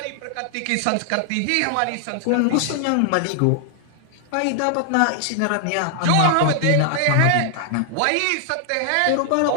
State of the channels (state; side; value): different; both; correlation 0.00